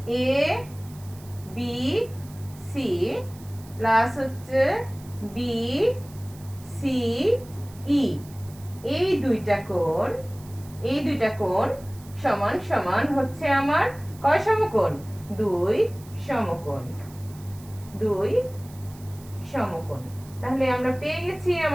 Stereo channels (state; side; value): noise; right; hiss, 22 dB below the sound